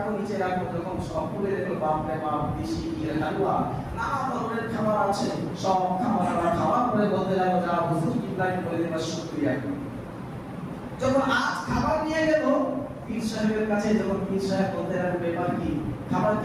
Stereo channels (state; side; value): identical; both; correlation 1.00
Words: নিচে রাখো, যখন সব খুলে দেখলো বাপরে বাপ, দেশি হালুয়া, নানা ধরনের খাবার আছে, সব খাবার খাওয়ার পরে বলতে লাগলো, যা হুজুর কিবলাকে বলে দেবা শুকরিয়া। যখন আজ খাবার নিয়ে গেল পীর সাহেবের কাছে, যখন পীর সাহেব বলতে লাগলো, ব্যাপার কি, খাবার